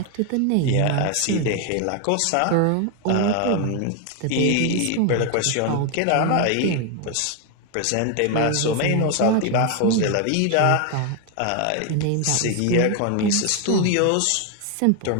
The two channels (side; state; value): both; different; correlation 0.01